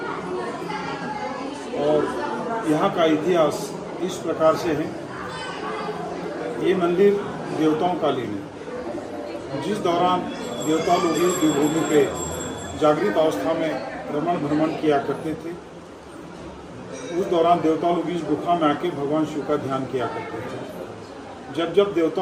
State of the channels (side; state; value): both; identical; correlation 1.00